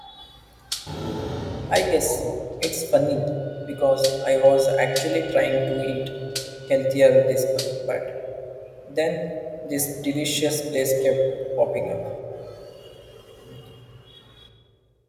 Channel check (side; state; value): both; identical; correlation 1.00